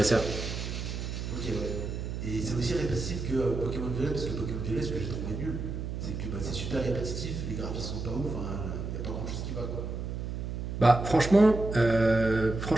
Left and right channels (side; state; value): right; noise; hum, 5 dB below the sound